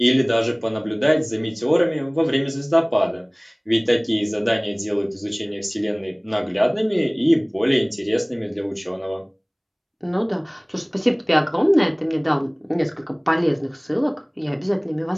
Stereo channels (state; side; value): identical; both; correlation 1.00